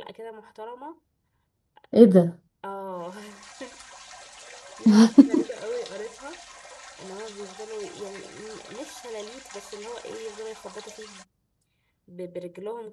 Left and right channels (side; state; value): both; identical; correlation 1.00